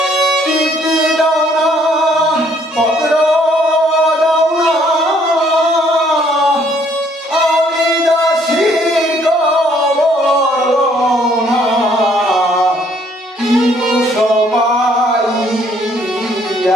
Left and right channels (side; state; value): both; normal; correlation 0.64